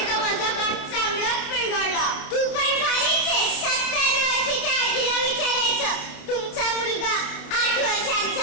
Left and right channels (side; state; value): right; late; 29 ms